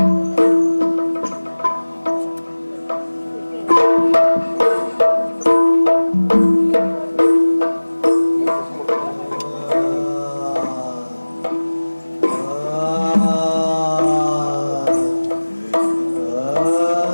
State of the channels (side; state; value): both; inverted; correlation -1.00